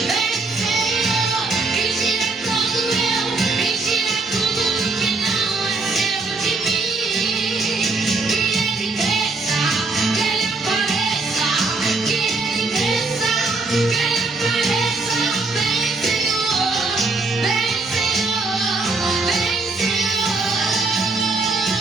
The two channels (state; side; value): quieter; left; 3.6 dB